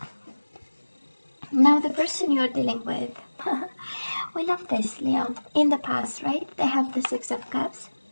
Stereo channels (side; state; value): both; inverted; correlation -1.00